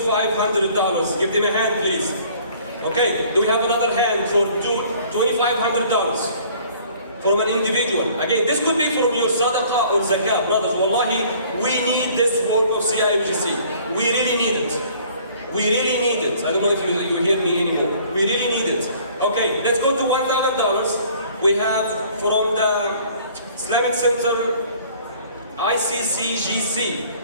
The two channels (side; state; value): both; inverted; correlation -0.55